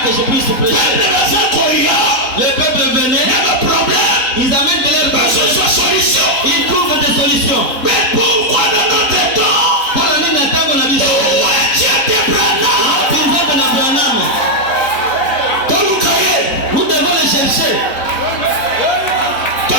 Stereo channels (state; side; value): late; right; 3.9 ms